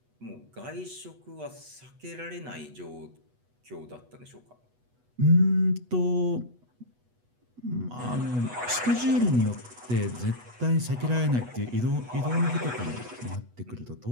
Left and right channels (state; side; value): late; left; 8.2 ms